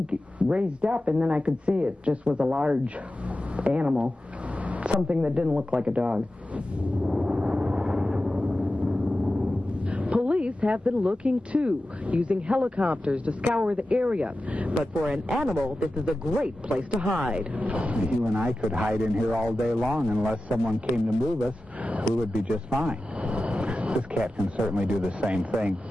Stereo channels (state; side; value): normal; both; correlation 0.93